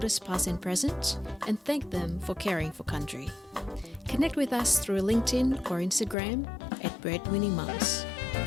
past and present, and thank them for caring for country. Connect with us through LinkedIn or Instagram at Breadwinning Mums.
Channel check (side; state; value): right; drops out; at 6.2 s